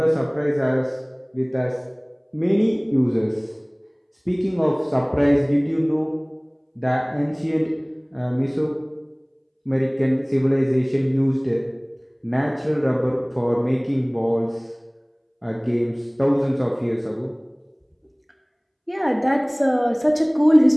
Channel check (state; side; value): identical; both; correlation 1.00